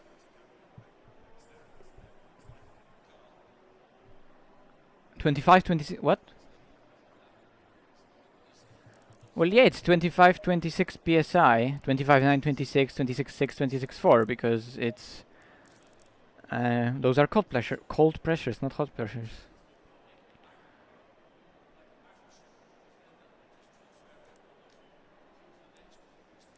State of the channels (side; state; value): both; identical; correlation 1.00